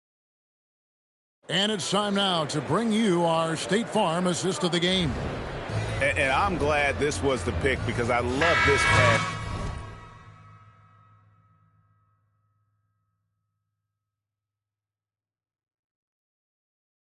And it's time now to bring you our State Farm assist of the game. And I'm glad this was the pick because I love this pass.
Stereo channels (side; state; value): both; identical; correlation 1.00